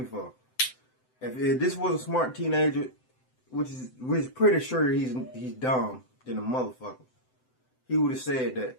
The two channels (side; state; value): right; late; 7.8 ms